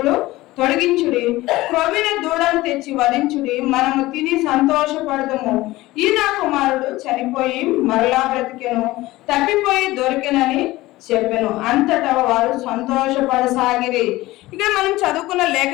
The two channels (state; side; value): quieter; right; 18.3 dB